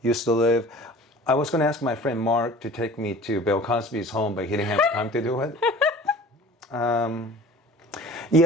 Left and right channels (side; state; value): both; normal; correlation 0.44